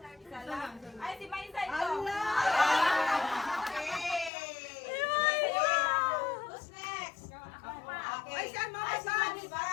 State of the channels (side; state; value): right; drops out; at 4.3 s